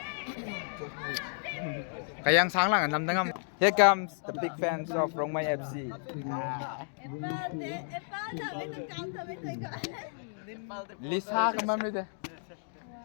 Kayang sáng lang nằm đang. Here comes the big fans of Rongmai FC. Lisa ka ma'am nito.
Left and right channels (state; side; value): silent; right; digital silence